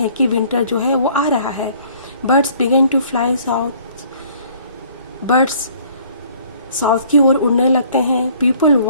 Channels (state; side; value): inverted; both; correlation -0.57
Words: कि विंटर जो है वो आ रहा है। Birds began to fly south, birds south की ओर उड़ने लगते हैं। People